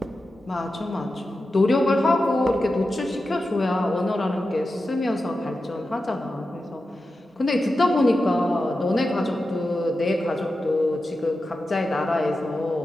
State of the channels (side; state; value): both; normal; correlation 0.91